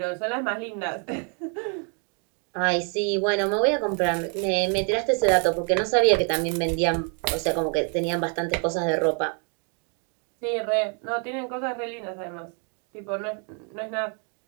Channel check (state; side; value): quieter; left; 39.3 dB